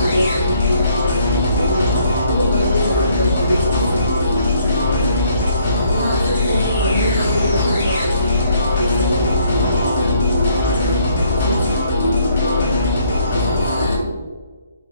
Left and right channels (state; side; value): inverted; both; correlation -0.65